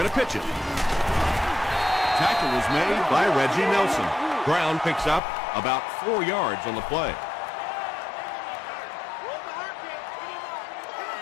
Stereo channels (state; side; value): drops out; right; at 5.2 s